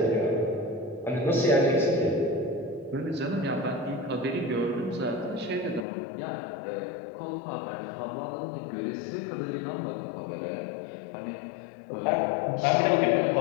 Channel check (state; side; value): drops out; right; at 5.9 s